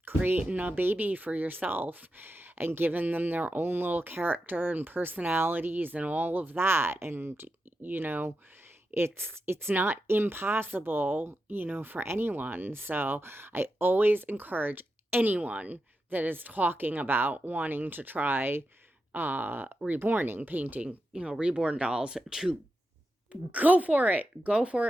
creating a baby for yourself and giving them their own little character and personalities and all of that. And, it's not impossible, for anyone. So I always encourage anyone that is talking about wanting to try reborning, painting, reborn dolls, to go for it. Go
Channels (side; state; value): both; normal; correlation 0.89